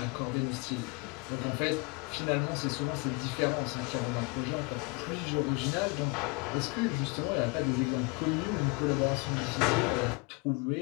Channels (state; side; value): quieter; right; 30.5 dB